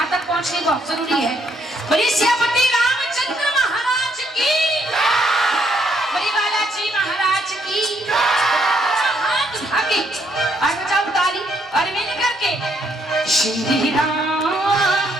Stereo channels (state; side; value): normal; both; correlation 0.71